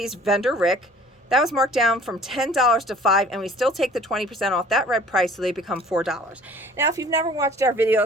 vendor Rick. That was marked down from $10 to $5, and we still take the 20% off that red price, so they become $4. Now, if you've never watched our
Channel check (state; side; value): normal; both; correlation 0.50